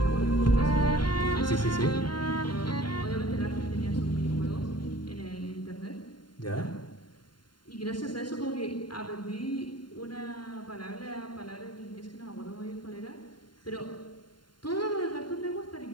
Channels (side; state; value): right; late; 0.72 ms